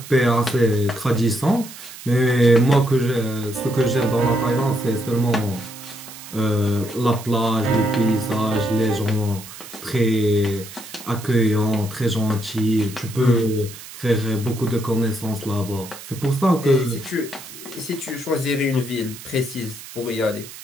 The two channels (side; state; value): right; noise; hiss, 15 dB below the sound